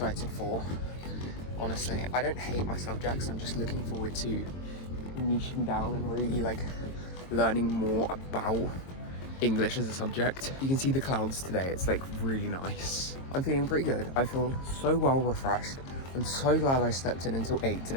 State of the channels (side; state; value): right; late; 22 ms